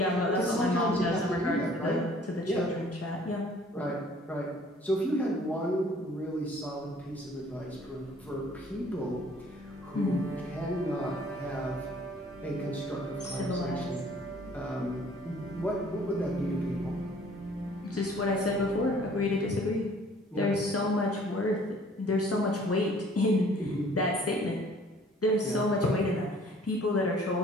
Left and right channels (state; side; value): normal; both; correlation 0.55